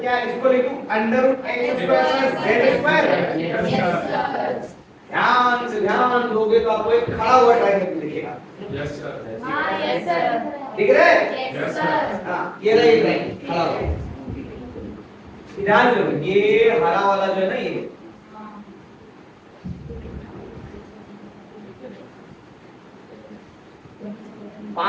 इसको लिखूं √x² + z²? Yes sir. ध्यान दोगे तो आपको एक खड़ा हुआ ट्रायंगल दिखेगा। Yes sir. हां यस सर। दिख रहा है? Yes sir. हां ये रहा, ये ट्रायंगल खड़ा हुआ। ध्यान दो, ये हरा वाला जो है ना, ये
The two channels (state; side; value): identical; both; correlation 1.00